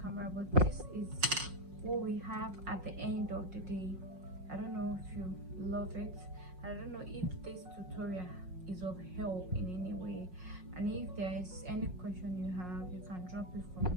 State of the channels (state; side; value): late; left; 5.5 ms